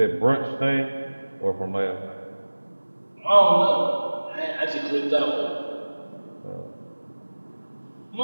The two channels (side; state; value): both; inverted; correlation -1.00